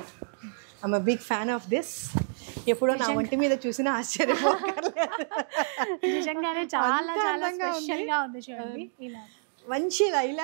I'm a big fan of this. ఎప్పుడో నా వంటి మీద చూసినా ఆశ్చర్యపోకర్లేదు. నిజంగానే చాలా చాలా స్పెషల్ గా ఉంది చూడండి. ఇలా మంచి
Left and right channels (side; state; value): left; silent; digital silence